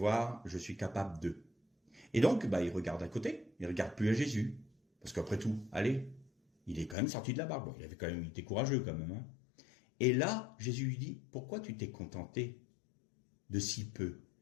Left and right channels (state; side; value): drops out; right; at 7.0 s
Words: je suis capable de. Et donc, il regarde à côté, il regarde plus à Jésus. Parce qu'après tout, allez, il est quand même sorti de la barque. Bon, il était courageux quand même. Hein. Et là, Jésus lui dit, pourquoi tu t'es contenté de si peu?